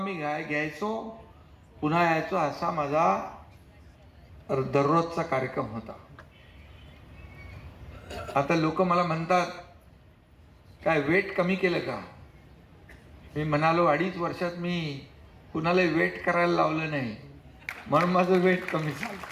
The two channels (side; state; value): both; identical; correlation 1.00